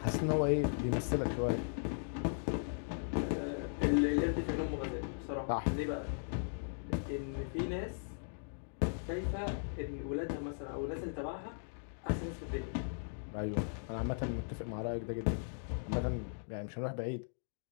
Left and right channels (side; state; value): right; silent; digital silence